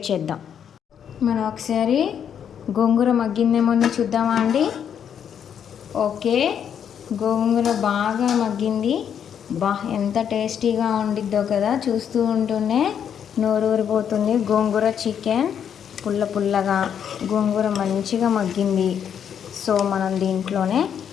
చేద్దాం. మనం ఒకసారి గోంగూర మగ్గిందేమో చూద్దామా అండి. ఓకే, గోంగూర బాగా మగ్గింది. ఎంత టేస్టీగా ఉండిద్దో కదా. చూస్తూ ఉంటూనే నోరు ఊరిపోతుంది. గోంగూర చికెన్ పుల్ల పుల్లగా, గోంగూర మంచిగా మగ్గింది. సో మనం దీంట్లోనే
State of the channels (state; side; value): quieter; right; 8.4 dB